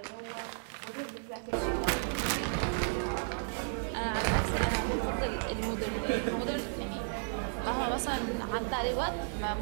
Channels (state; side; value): silent; left; digital silence